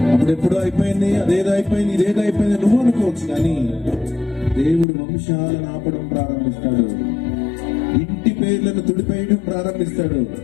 అప్పుడెప్పుడో అయిపోయింది, అదేదో అయిపోయింది, ఇదేదో అయిపోయింది నువ్వు అనుకోవచ్చు, కానీ దేవుడు వంశాలను ఆపడం ప్రారంభిస్తాడు. ఇంటి పేర్లను తుడిపేయడం ప్రారంభిస్తాడు.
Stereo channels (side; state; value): right; drops out; at 4.9 s